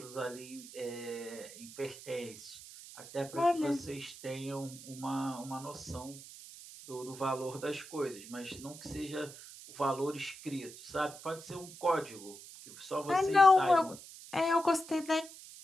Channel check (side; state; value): right; noise; hiss, 15 dB below the sound